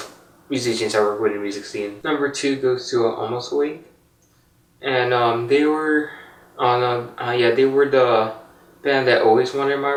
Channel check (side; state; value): both; identical; correlation 1.00